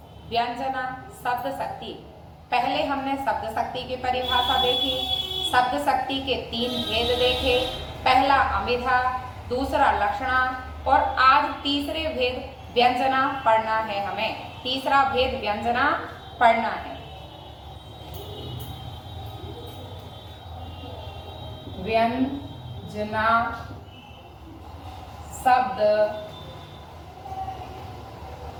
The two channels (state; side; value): identical; both; correlation 1.00